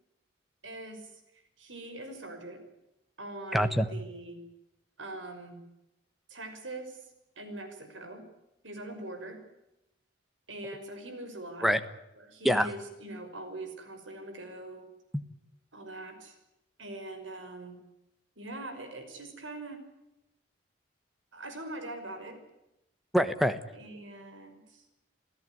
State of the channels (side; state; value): both; normal; correlation 0.75